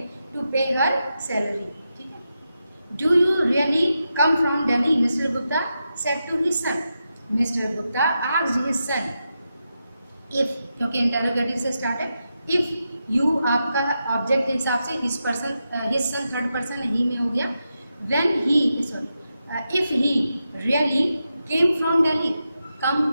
टू पे हर सैलरी, ठीक है। Do you really come from Delhi, Mister Gupta said to his son, Mister Gupta asked his son if, क्योंकि interrogative से start है, इफ यू आपका ऑब्जेक्ट के हिसाब से his person, his son third person ही में हो गया, when he, sorry, if he really came from Delhi,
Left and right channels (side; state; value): both; inverted; correlation -0.88